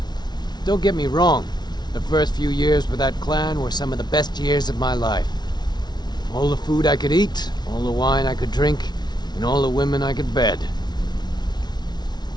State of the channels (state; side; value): late; right; 0.20 ms